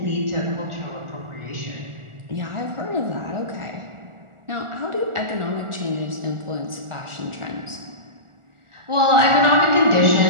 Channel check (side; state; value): left; late; 1.4 ms